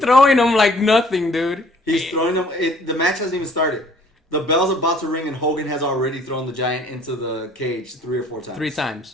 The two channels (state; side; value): normal; both; correlation 0.56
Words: him like nothing, dude? He's throwing them. The match hasn't even started. The bell's about to ring, and Hogan has already thrown the Giant into the cage 3 or 4 times. 3